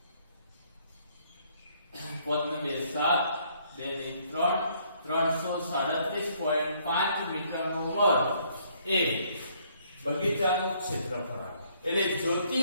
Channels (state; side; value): inverted; both; correlation -0.66